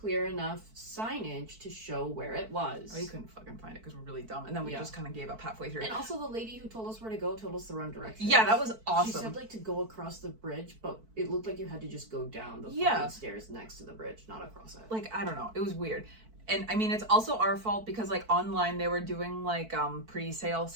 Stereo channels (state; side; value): late; left; 4.5 ms